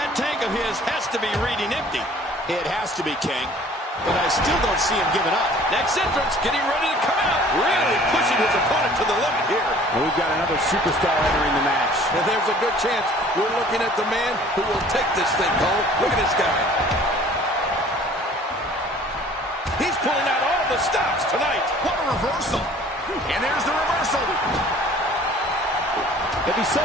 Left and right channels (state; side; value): normal; both; correlation 0.51